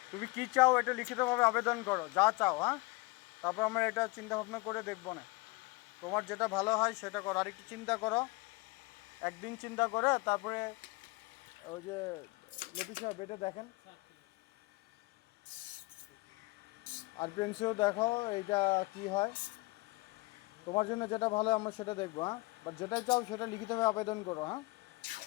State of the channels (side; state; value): right; quieter; 24.1 dB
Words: তুমি কি চাও এটা লিখিতভাবে আবেদন করো, যা চাও, হ্যাঁ, তারপর আমরা এটা চিন্তা ভাবনা করে দেখবো না। তোমার যেটা ভালো হয় সেটা করো, আর একটু চিন্তা করো, একদিন চিন্তা করে তারপরে ওই যে লতিফ সাহেব এটা দেখেন, আর প্রিন্সিও দেখো এইটা কি হয়। তোমার জন্য যেটা ভালো আমরা সেটা দেখবো, হ্যাঁ, বাট যেটা চাও সেটা লিখিতভাবে আবেদন করো, হ্যাঁ।